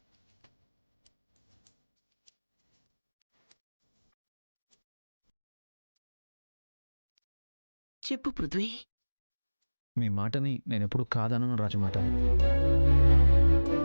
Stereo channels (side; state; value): both; inverted; correlation -1.00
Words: చెప్పు పృథ్వీ. మీ మాటని నేను ఎప్పుడు కాదనను రాజమాత.